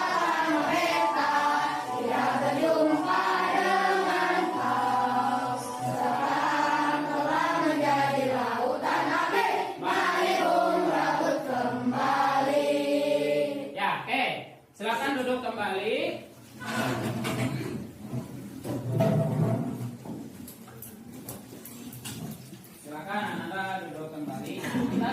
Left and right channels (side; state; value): both; identical; correlation 1.00